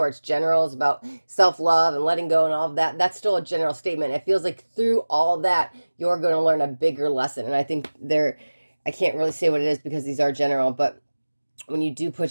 it's general, it's about self-love and letting go and all of that. That's still a general statement. It feels like through all that, you're going to learn a bigger lesson. And I think I can't really say what it is because these are general, but when you do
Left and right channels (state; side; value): inverted; both; correlation -1.00